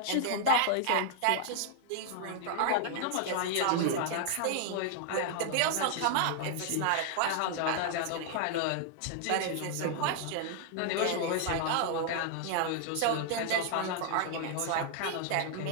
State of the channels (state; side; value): different; both; correlation 0.00